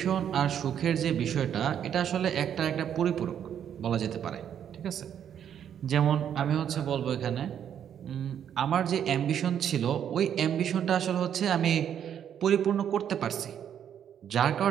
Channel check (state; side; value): quieter; left; 9.2 dB